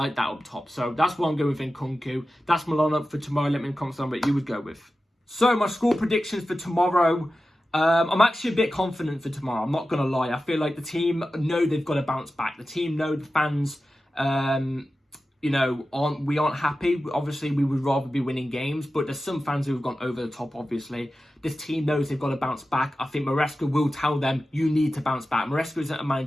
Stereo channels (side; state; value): both; normal; correlation 0.93